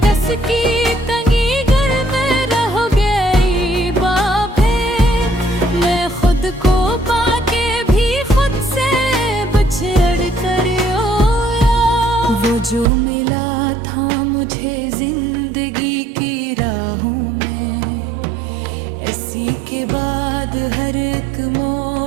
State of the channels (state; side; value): drops out; left; at 12.9 s